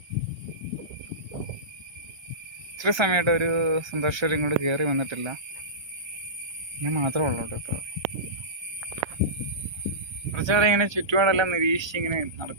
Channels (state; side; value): late; left; 1.3 ms